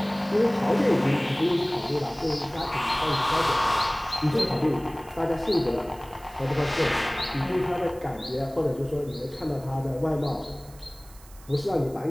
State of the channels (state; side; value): noise; right; hiss, 23 dB below the sound